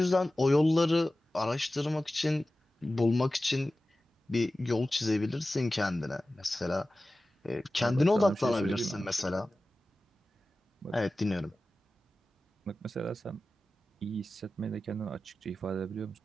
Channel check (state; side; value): normal; both; correlation 0.95